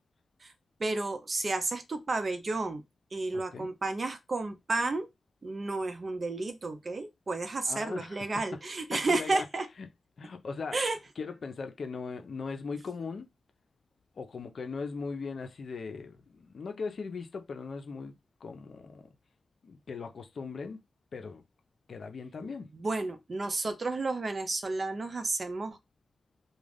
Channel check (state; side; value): normal; both; correlation 0.91